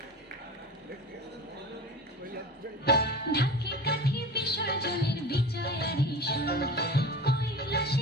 ঢাকি কাঠি বিসর্জনের বিজয়ারি সুর,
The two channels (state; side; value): normal; both; correlation 0.33